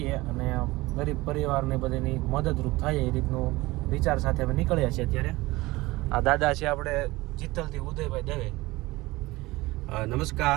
અને ગરીબ પરિવારને બધાની મદદરૂપ થાય એ રીતનું વિચાર સાથે અમે નીકળ્યા છીએ. અત્યારે આ દાદા છે આપણે ચિત્તલથી ઉદયભાઈ દવે.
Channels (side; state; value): left; quieter; 20.4 dB